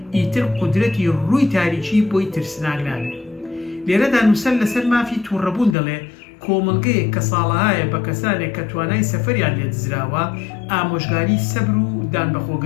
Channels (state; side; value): drops out; right; at 5.8 s